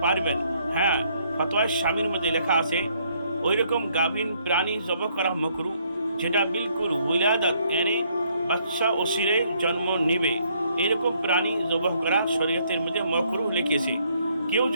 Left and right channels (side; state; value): both; inverted; correlation -0.68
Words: পারবেন। হ্যাঁ, ফতোয়া শামির মধ্যে লেখা আছে ওই রকম গাভীন প্রাণী জবাহ করা মাকরু, যেটা বিলকুল উলাদাত এনে বাচ্চা ওসিরে জন্ম নেবে, এরকম প্রাণী জবাহ করা শরীয়তের মধ্যে মাকরু লিখেছে। কেউ